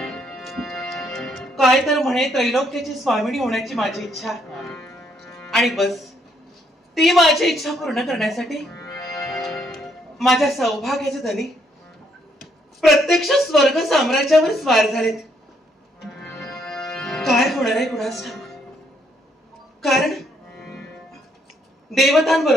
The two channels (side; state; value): both; normal; correlation 0.71